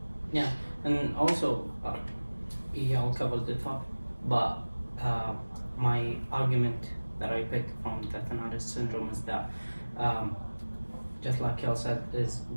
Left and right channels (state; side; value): inverted; both; correlation -1.00